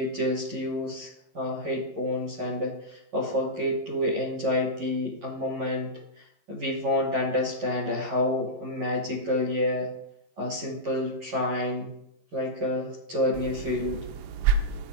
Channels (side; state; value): left; late; 11 ms